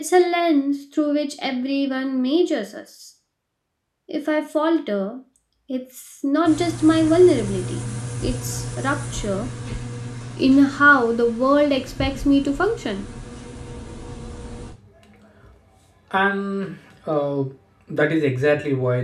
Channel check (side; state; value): both; identical; correlation 1.00